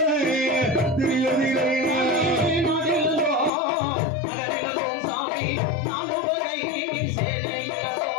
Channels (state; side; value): drops out; right; at 3.5 s